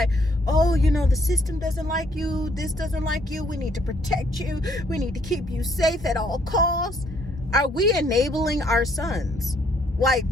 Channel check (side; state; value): both; normal; correlation 0.67